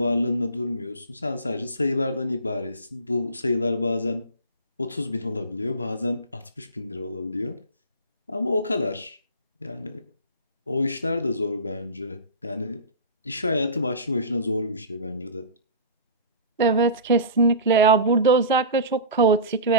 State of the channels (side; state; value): both; inverted; correlation -0.31